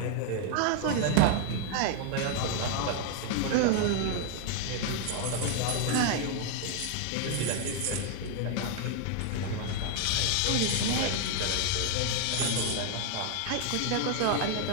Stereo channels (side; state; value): both; different; correlation 0.00